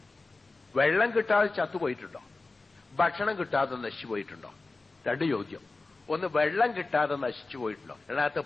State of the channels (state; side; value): quieter; right; 3.5 dB